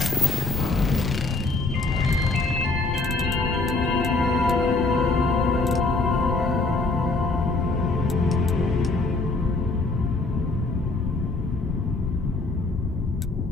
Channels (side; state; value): right; quieter; 3.4 dB